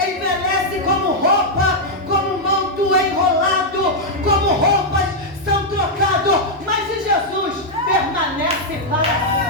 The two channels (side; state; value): both; normal; correlation -0.03